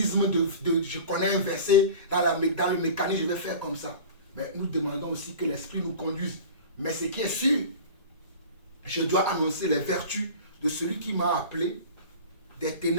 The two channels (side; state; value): both; inverted; correlation -0.37